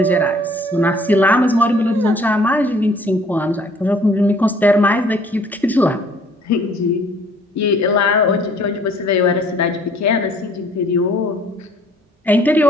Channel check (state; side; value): normal; both; correlation 0.57